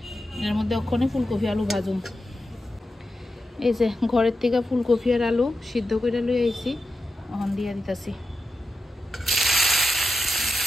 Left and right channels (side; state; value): both; normal; correlation 0.90